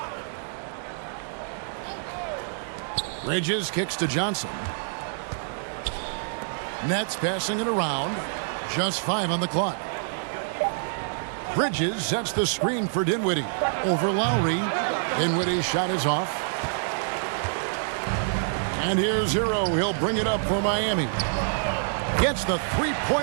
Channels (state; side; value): silent; left; digital silence